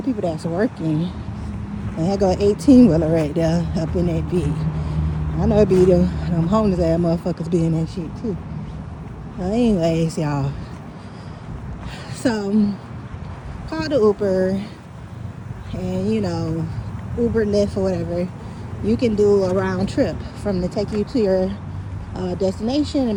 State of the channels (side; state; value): both; identical; correlation 1.00